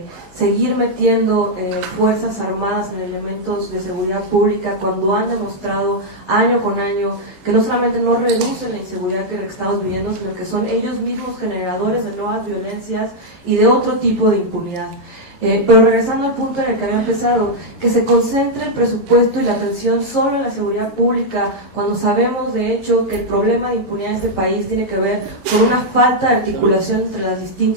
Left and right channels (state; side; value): late; left; 11 ms